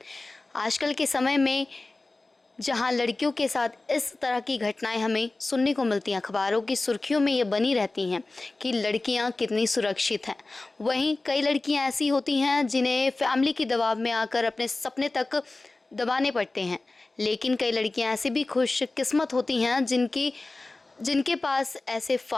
आजकल के समय में जहाँ लड़कियों के साथ इस तरह की घटनाएं हमें सुनने को मिलती हैं, अखबारों की सुर्खियों में ये बनी रहती हैं कि लड़कियां कितनी सुरक्षित हैं। वहीं कई लड़कियां ऐसी होती हैं जिन्हें फैमिली के दबाव में आकर अपने सपने तक दबाने पड़ते हैं। लेकिन कई लड़कियां ऐसी भी खुशकिस्मत होती हैं जिनके पास ऐसे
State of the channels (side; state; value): right; quieter; 3.2 dB